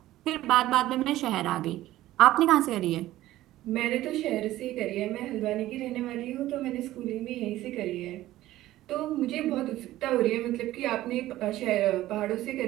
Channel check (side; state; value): left; quieter; 15.2 dB